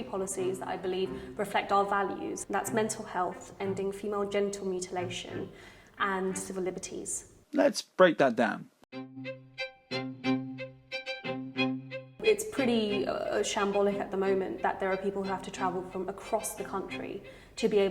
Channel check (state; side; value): identical; both; correlation 1.00